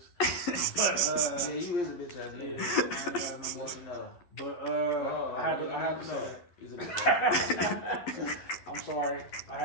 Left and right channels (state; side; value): late; right; 11 ms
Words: Yeah, you is a bitch ass nigga. Yeah, Let you know. But I had to say that. He's a bitch ass. I'm sorry. I